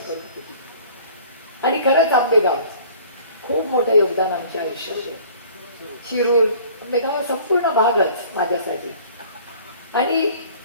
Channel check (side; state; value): both; inverted; correlation -0.50